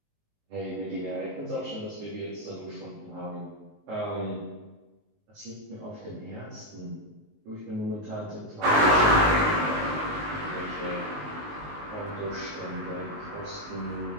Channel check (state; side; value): late; left; 19 ms